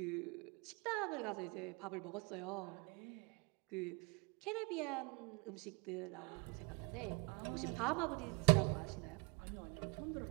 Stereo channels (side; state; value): left; quieter; 31.1 dB